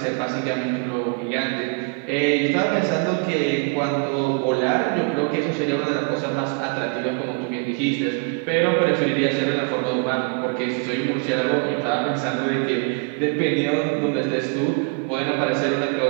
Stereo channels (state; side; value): quieter; left; 38.3 dB